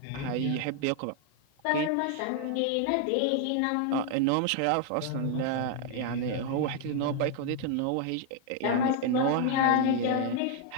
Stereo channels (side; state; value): both; different; correlation 0.00